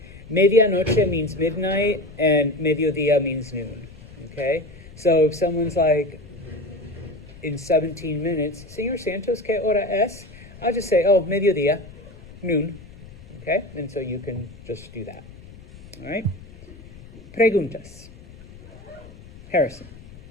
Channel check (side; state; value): left; noise; rumble, 19 dB below the sound